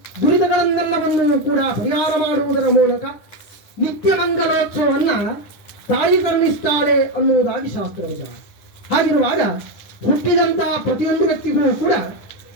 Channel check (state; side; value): late; right; 9.9 ms